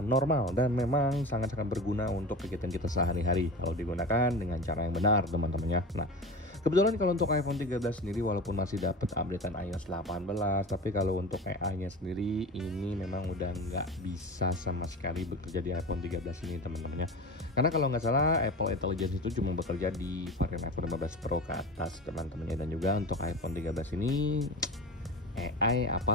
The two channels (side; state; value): both; normal; correlation 0.30